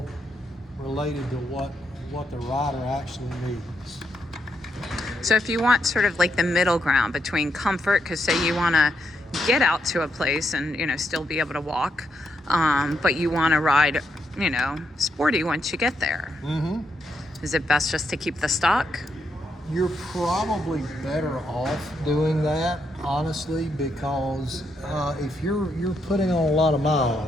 related to what the rider actually needs. So if you want sort of like the middle ground between comfort, because say you want to get out to a place and, you know, still be able to walk, but you want to ride, you know, sporty once you get there. Is it best just to keep the stock? You're probably better off doing that, honestly, because if you're putting on a lot of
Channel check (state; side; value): normal; both; correlation 0.80